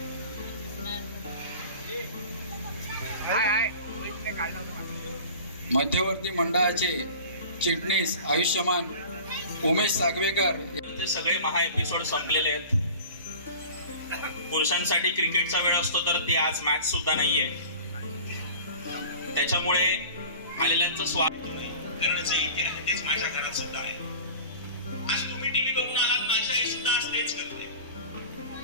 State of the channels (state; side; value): inverted; both; correlation -0.40